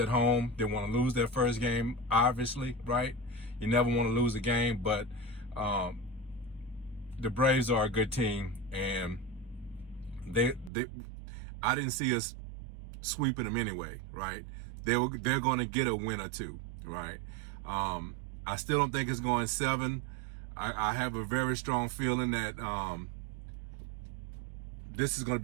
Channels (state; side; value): drops out; left; at 10.7 s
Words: home. Didn't want to lose that first game. Obviously, right? You never want to lose a game, but the Braves are a good team, and I didn't see us sweeping them anyway, right? They're going to get a win or two, right? I still don't think it's going 7. I have a very strong feeling that this is going to